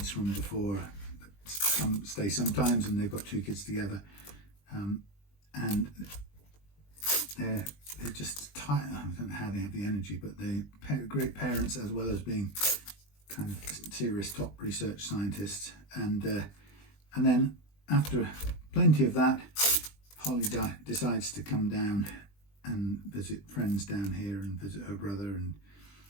from before that stay sometimes, and they've got two kids together, and they're just tired. I don't know how they have the energy, but they're great parents as well as being kind of serious top research scientists. And then after plenty of that, Holly decides to come down and visit friends down here and visit her brother and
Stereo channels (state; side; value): late; right; 20 ms